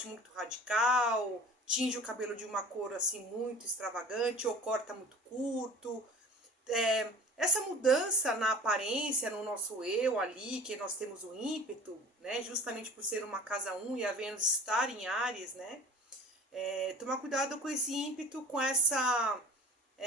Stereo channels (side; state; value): both; normal; correlation 0.43